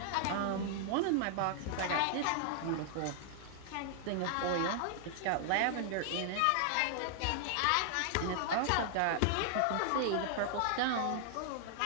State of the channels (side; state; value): both; different; correlation -0.01